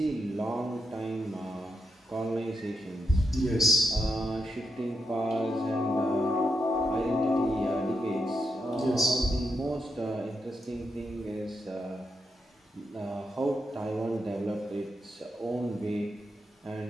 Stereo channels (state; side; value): normal; both; correlation 0.84